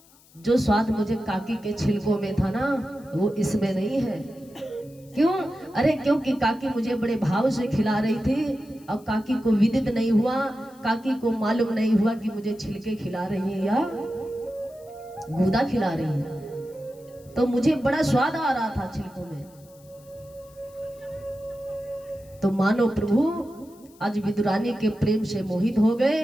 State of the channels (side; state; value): left; noise; hiss, 28 dB below the sound